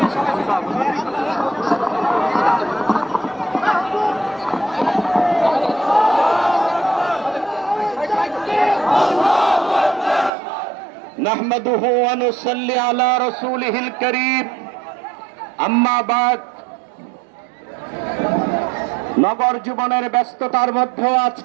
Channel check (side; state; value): left; drops out; at 10.3 s